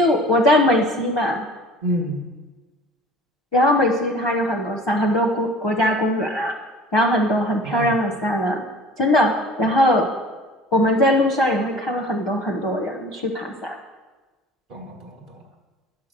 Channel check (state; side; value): normal; both; correlation 0.45